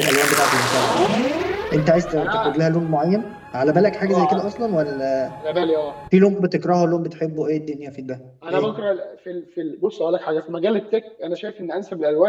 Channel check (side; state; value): both; identical; correlation 1.00